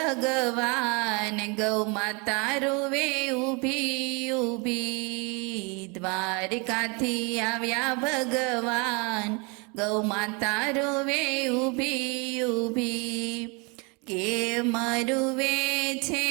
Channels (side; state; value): left; quieter; 31.2 dB